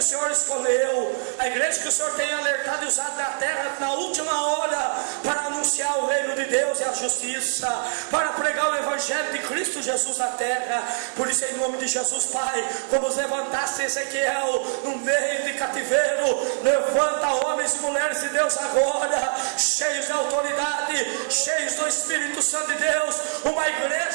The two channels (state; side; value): silent; left; digital silence